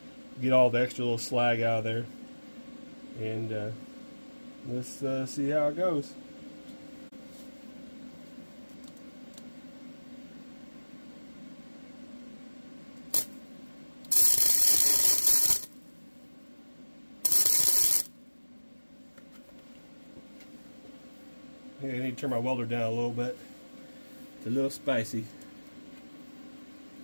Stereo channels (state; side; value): inverted; both; correlation -1.00